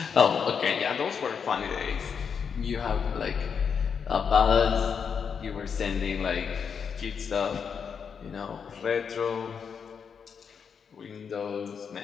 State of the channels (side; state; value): right; quieter; 6.6 dB